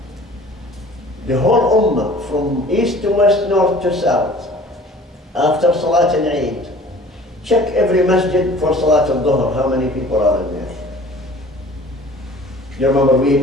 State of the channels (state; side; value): normal; both; correlation 0.47